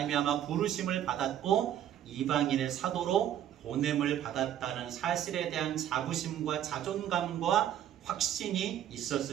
부르심을 받았고 이방인의 사도로 보냄을 받았다는 사실에 대한 자부심과 자존감과 확신이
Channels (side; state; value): left; quieter; 10.9 dB